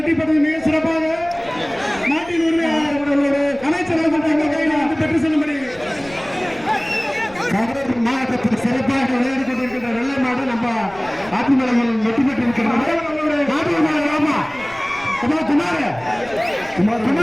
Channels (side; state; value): left; noise; rumble, 22 dB below the sound